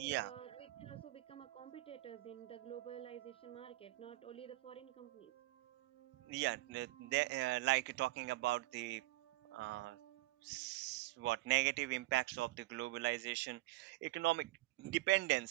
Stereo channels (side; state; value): left; quieter; 18.9 dB